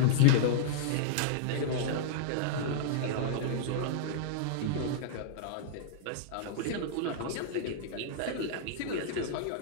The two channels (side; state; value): both; different; correlation -0.02